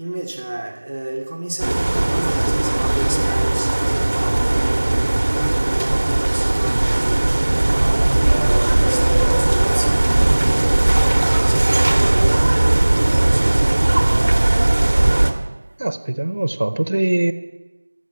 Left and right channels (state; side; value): inverted; both; correlation -1.00